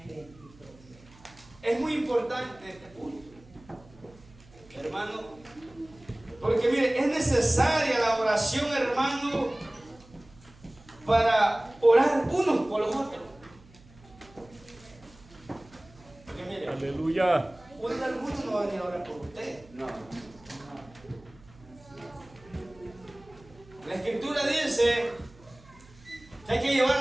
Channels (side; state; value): right; noise; hum, 24 dB below the sound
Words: Es muy importante este punto, hermano, porque mire, es necesaria la oración, hermano, para orar unos por los otros. Porque mire, Aleluya. alguno no va a venir a orar por usted. No. La Escritura dice que hay que llevar